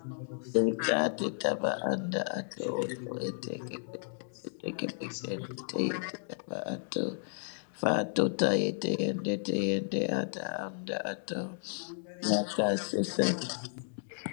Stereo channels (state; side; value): silent; right; 56 dB below the other